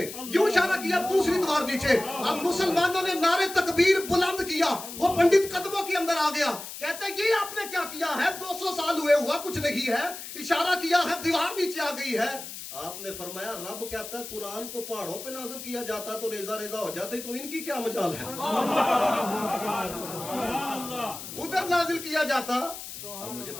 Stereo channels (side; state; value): left; noise; hiss, 10 dB below the sound